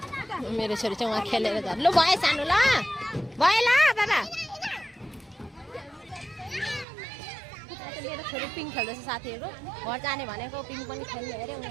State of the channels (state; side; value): drops out; left; at 6.9 s